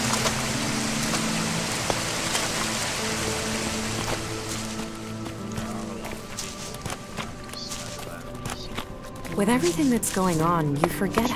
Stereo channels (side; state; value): both; identical; correlation 1.00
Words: With everything that's going on, you forget